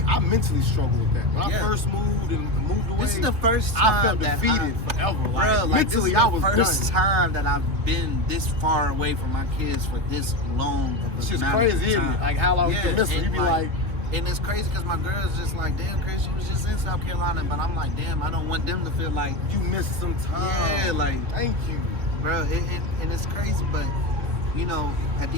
I mentally struggled with that. When I Yeah. first moved and moved away, This is the first time I felt that defeated forever. Like, Bruh, like, mentally, this is I was the first done. time that I've been this far away from my kids for this long of a It's just amount crazy, of isn't time. it? Like, how long you can miss them. and You be like, and it's crazy because my girl's just like, damn, Chris, you was just in South Carolina, but I'm like, damn, I don't want them to feel like, you missed some time. yeah, like, Thank you. bro, and it's crazy, but, you know, at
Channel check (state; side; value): late; left; 3.2 ms